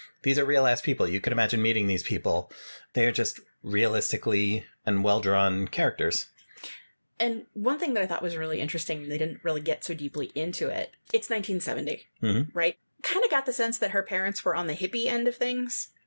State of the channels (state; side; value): inverted; both; correlation -1.00